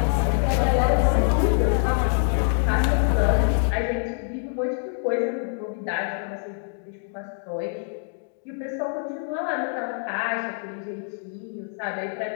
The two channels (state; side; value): silent; right; 62 dB below the other